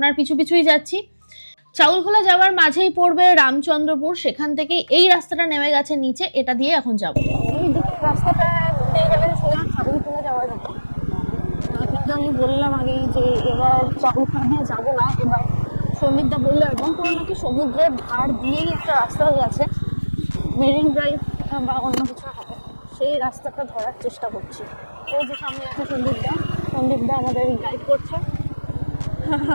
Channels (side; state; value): both; inverted; correlation -1.00